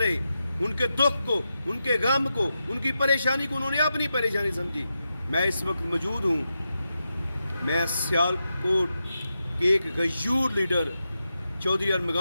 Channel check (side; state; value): both; inverted; correlation -0.88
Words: ان کے دکھ کو, ان کے غم کو, ان کی پریشانی کو انہوں نے اپنی پریشانی سمجھی. میں اس وقت موجود ہوں. میں سیالکوٹ کے ایک غیور لیڈر چودھری